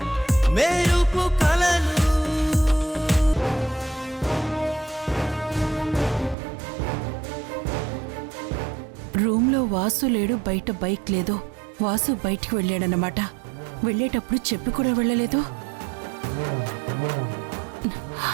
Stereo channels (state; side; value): drops out; left; at 6.4 s